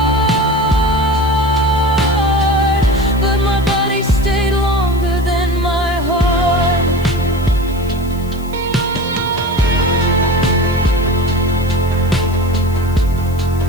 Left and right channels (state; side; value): noise; left; hiss, 21 dB below the sound